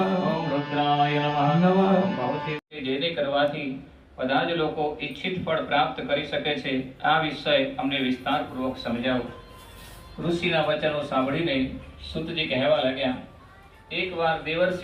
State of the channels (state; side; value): identical; both; correlation 1.00